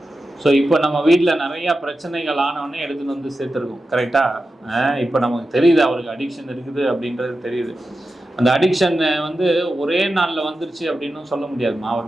ஸோ இப்போ நம்ம வீட்டில் நிறையா பிரச்சனைகள் ஆனவொடனே எடுத்துகிட்டு வந்து சேர்த்துருக்கோம். கரெக்டாக இப்போ நமக்கு தெரியுது அவருக்கு அடிக்ஷன் இருக்குது அப்படின்றது தெரியுது. அந்த அடிக்ஷன் ஒரே நாளில் வந்துருச்சு அப்படின்னு சொல்ல முடியாதுமா.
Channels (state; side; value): normal; both; correlation 0.92